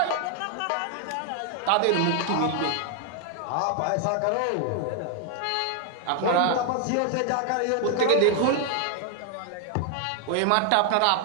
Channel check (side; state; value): both; different; correlation 0.00